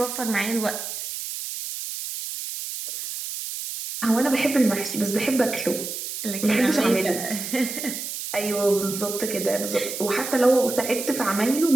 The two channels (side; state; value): right; noise; hiss, 6 dB below the sound